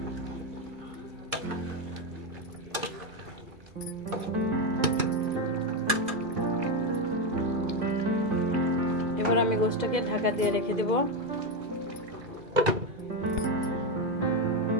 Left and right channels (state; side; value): late; left; 2.0 ms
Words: এবার আমি গোশতটাকে ঢাকা দিয়ে রেখে দেব।